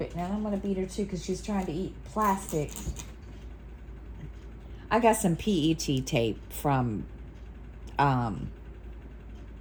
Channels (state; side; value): identical; both; correlation 1.00